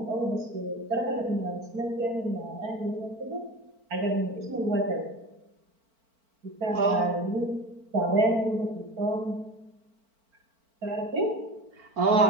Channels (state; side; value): late; left; 4.4 ms